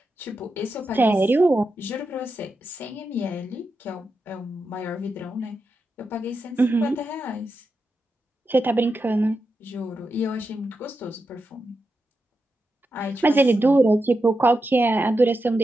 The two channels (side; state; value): both; normal; correlation 0.88